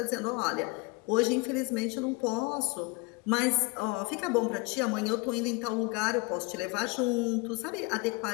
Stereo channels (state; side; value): quieter; right; 26.3 dB